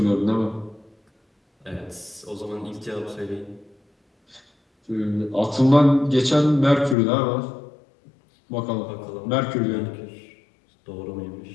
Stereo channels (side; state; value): right; drops out; at 7.0 s